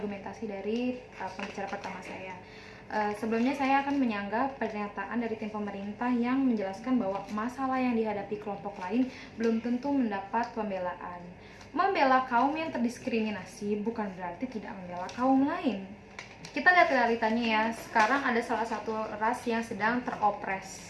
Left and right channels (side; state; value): both; identical; correlation 1.00